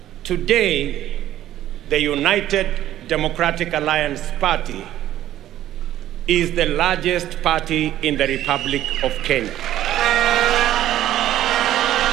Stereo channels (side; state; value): left; quieter; 12.9 dB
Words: Today, the United Democratic Alliance Party is the largest party in the Republic of Kenya.